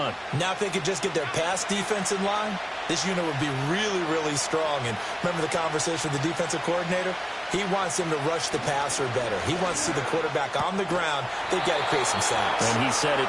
Now if they could just get their pass defense in line, this unit would be really, really strong. And remember the conversation with the defensive coordinator? He wants them to rush the passer better. He wants to see the quarterback on the ground. They've got to create some sacks. And he said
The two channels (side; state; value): both; identical; correlation 1.00